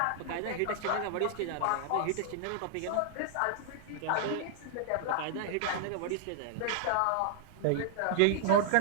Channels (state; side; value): different; both; correlation -0.01